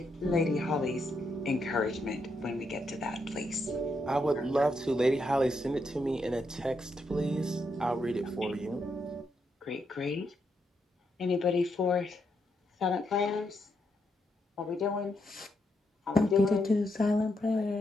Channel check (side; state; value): both; normal; correlation 0.80